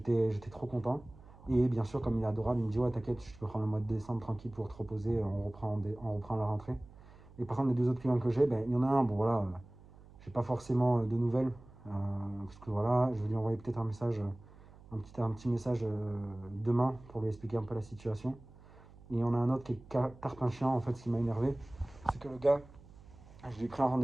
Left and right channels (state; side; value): noise; right; hum, 21 dB below the sound